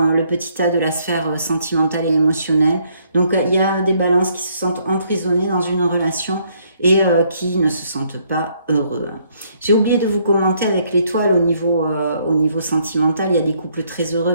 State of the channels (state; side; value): inverted; both; correlation -0.69